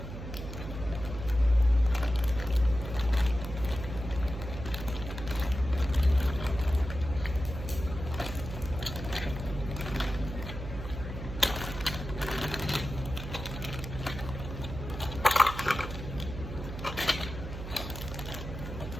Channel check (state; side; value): noise; right; hum, 8 dB below the sound